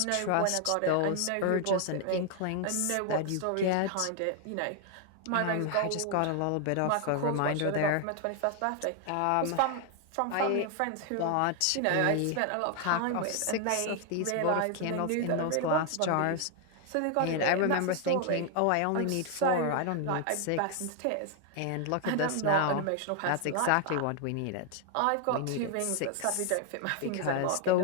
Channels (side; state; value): both; different; correlation 0.00